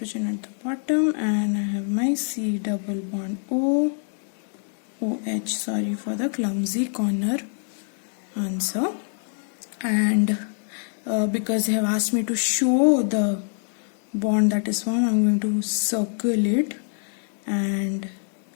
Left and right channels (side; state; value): right; silent; 57 dB below the other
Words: at the bottom, and I have my C double bond O, OH, sorry for the clumsy corner answer. And because they have asked me to show the bond that is formed, I'm going to circle it and